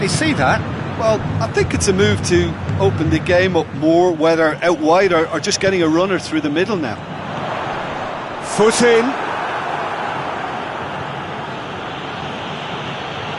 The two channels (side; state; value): both; identical; correlation 1.00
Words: see that. Well, I think it's a move to open the game up more, whether out wide or just getting a runner through the middle now. Foot in.